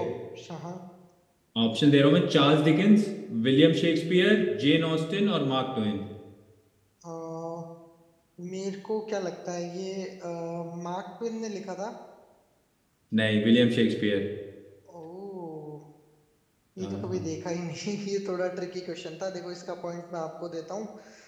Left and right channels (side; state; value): both; identical; correlation 1.00